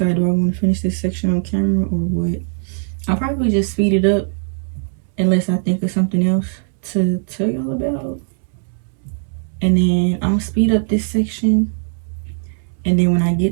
do I want to finish this section on camera or what? I'll probably just speed it up unless I think of something else to tell y'all about. And then I'm gonna speed up this section, and then when I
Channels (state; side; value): silent; left; digital silence